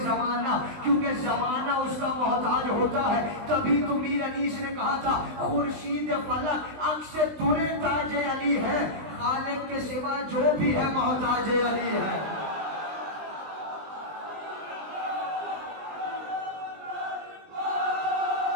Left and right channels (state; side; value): late; left; 20 ms